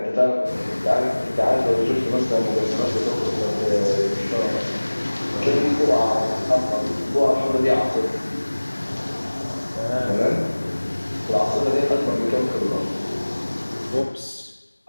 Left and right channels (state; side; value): inverted; both; correlation -1.00